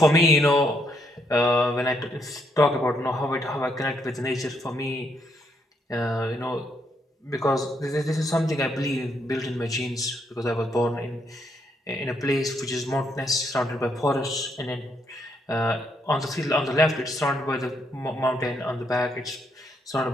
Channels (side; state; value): both; normal; correlation 0.74